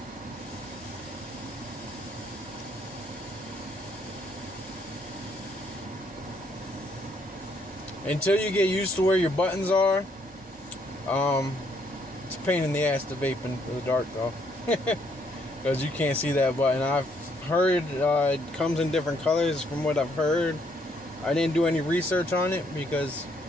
Until you get used to where your buttons are, It's a pain in the ass to vape in the dark though, because you can't see that button. I've heard it comes in different colors from what I've heard. I didn't do any research on it because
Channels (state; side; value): normal; both; correlation 0.70